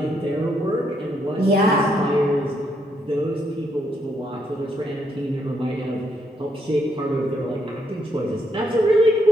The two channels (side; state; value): both; normal; correlation 0.75